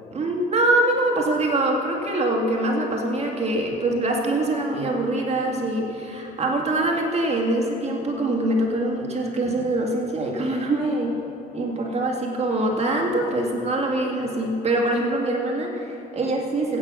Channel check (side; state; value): both; normal; correlation 0.45